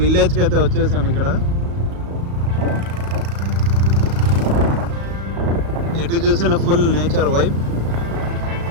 అయితే వచ్చేసాం. ఇక్కడ ఎటు చూసిన ఫుల్ నేచర్ వైబ్.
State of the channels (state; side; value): late; left; 35 ms